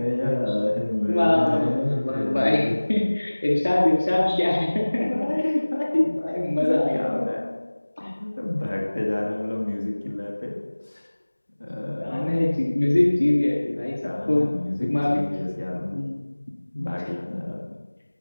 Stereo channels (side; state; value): both; inverted; correlation -1.00